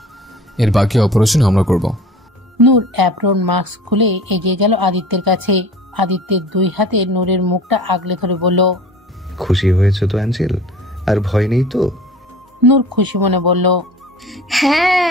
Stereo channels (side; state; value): both; normal; correlation 0.43